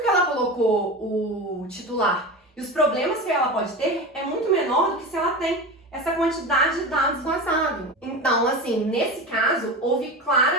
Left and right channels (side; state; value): both; normal; correlation 0.26